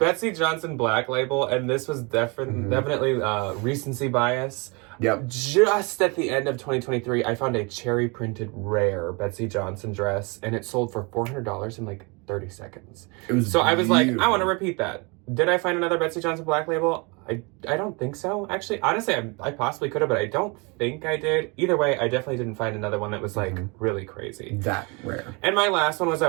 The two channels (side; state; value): left; quieter; 29.6 dB